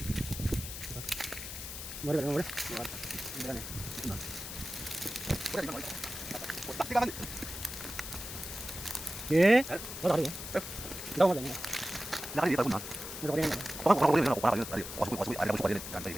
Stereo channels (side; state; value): left; noise; hiss, 8 dB below the sound